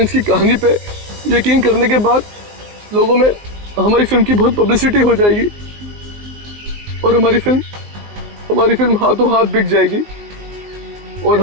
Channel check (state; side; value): late; left; 19 ms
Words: की कहानी पे यकीन करने के बाद लोगों में हमारी फिल्म की बहुत पब्लिसिटी हो जाएगी और हमारी फिल्म हाथों हाथ बिक जाएगी और